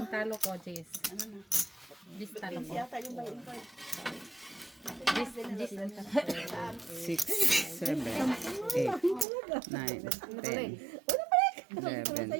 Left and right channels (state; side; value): drops out; left; at 9.2 s